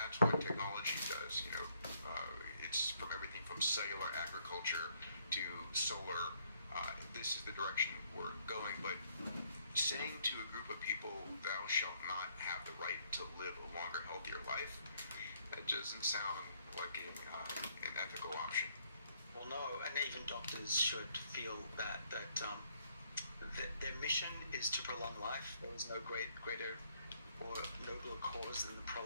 what technology does. It's from everything from cellular agriculture to solar. This is the direction we're going. But saying to a group of people, "Thou shalt not have the right to live a longer, healthier life," that doesn't sound like an ethical option. Well, no, and even doctors should feel that their mission is to prolong life. There is no greater or nobler cause than the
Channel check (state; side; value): inverted; both; correlation -0.68